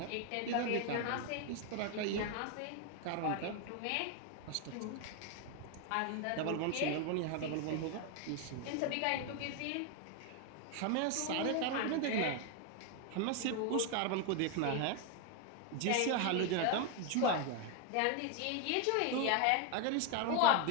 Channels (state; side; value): different; both; correlation 0.01